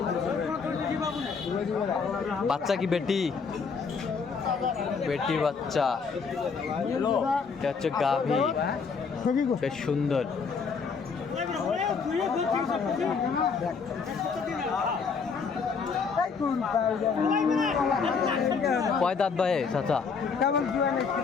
বাচ্চা কি বেটি? বেটি বাচ্চা, এটা হচ্ছে গাভী, বেশ সুন্দর। কয় দাঁত ভাই চাচা?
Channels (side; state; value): right; quieter; 5.4 dB